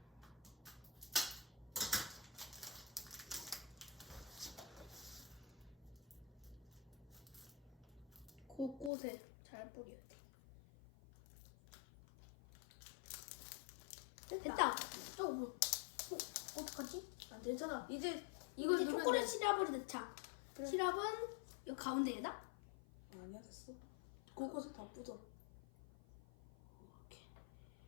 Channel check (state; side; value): drops out; right; at 8.9 s